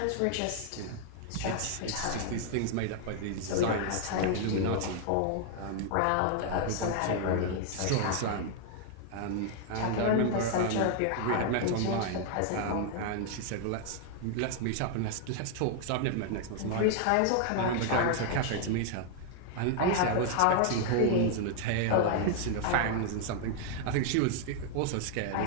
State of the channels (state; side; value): different; both; correlation 0.00